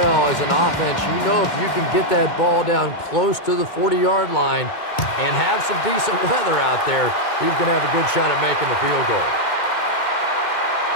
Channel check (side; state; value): right; late; 2.2 ms